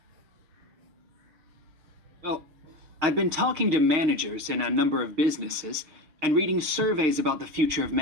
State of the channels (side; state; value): left; late; 6.4 ms